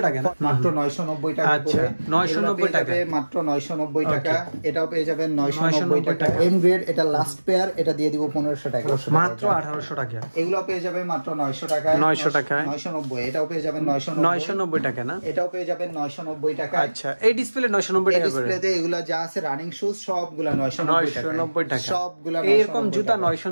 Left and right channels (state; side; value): inverted; both; correlation -1.00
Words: টাকা, মাত্র 990 টাকা। আচ্ছা 990 টাকা, মাত্র 990 টাকা। এটাও পেয়ে যাবেন 990 টাকা। এম গ্রেড, এটা লাস্ট পেয়ার, এটা দিয়ে দিব 1500 টাকা, মাত্র 1800 টাকা। এগুলো পেয়ে যাবেন মাত্র 900 টাকা, 900 টাকা, 990। এটাও পেয়ে যাবেন 990 টাকা না, এটাও পেয়ে যাবেন 990 টাকা। আচ্ছা এই ডিসপ্লে 990 টাকা করে। ডিসপ্লেতে এগুলা যা আছে রানিং শুজ সবগুলা 990 টাকা, সবগুলা এরকম জুতা